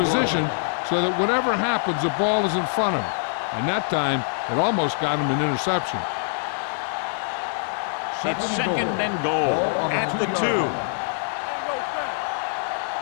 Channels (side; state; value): right; silent; digital silence